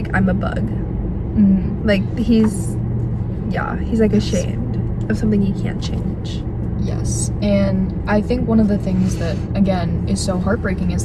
I'm a bug. Like, he's like ashamed of something he can't change. Yes, and I think one of the things that, again, is so heartbreaking is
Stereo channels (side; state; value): both; identical; correlation 1.00